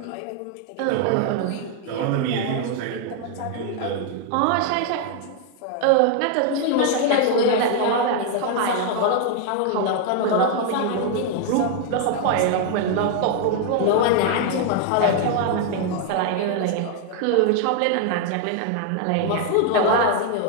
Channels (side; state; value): both; different; correlation 0.00